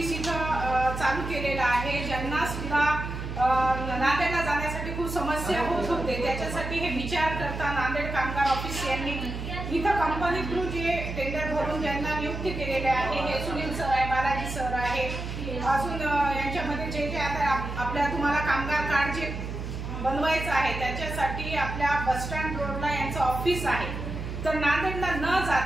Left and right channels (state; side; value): noise; right; hum, 6 dB below the sound